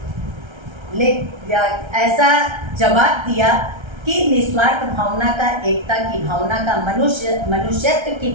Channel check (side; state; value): left; late; 1.3 ms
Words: ऐसा जवाब दिया कि निस्वार्थ भावना का, एकता की भावना का, मनुष्यत्व की